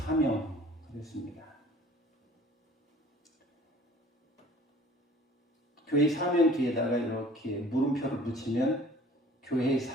그랬습니다. 교회의 사명 뒤에다가 이렇게 물음표를 붙이면 교회의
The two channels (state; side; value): normal; both; correlation 0.49